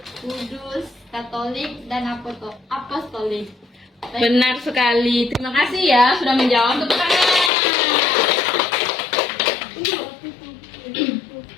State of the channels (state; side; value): drops out; right; at 7.5 s